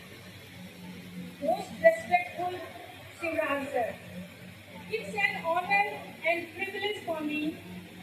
most respectful Shivraj sir. It's an honor and privilege for me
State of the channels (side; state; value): both; identical; correlation 1.00